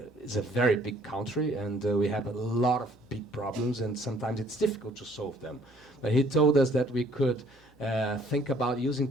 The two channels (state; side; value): normal; both; correlation 0.60